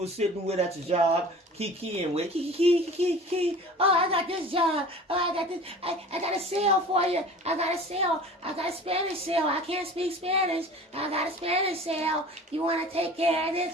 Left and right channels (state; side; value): normal; both; correlation 0.42